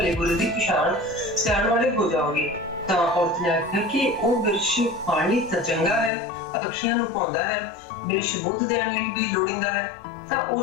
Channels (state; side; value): drops out; right; at 6.1 s